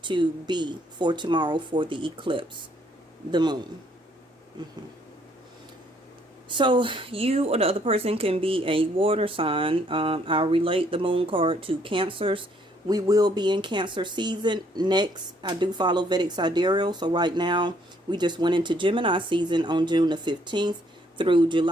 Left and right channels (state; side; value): normal; both; correlation 0.67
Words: to be for tomorrow for the eclipse, the moon. So you or the other person can be a water sign. I'll relate the moon card to Cancers. We will be in Cancer season. Next, I do follow Vedic Sidereal. So right now, we just went into Gemini season on June the 15th through